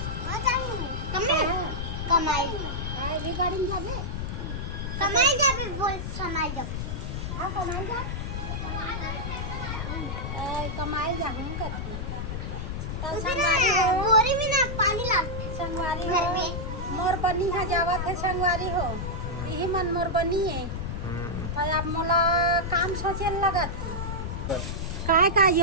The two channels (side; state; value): left; noise; rumble, 4 dB below the sound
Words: कमाई भी गाड़ी में जाबे कमाई जाबे बोल समाई जब हाँ कमाई जा कमाई जाबू कथी तो संगवारी हो बोरी में ना पानी ला संगवारी घर हो में मोर बनी है जावत है संगवारी हो यही मन मोर बनी है तो अब मोला काम सोचे लगत का